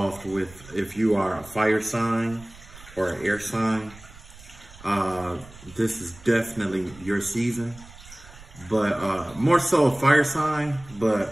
with, if you are a fire sign or an air sign. This is definitely your season, but more so a fire sign,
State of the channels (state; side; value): noise; right; rumble, 20 dB below the sound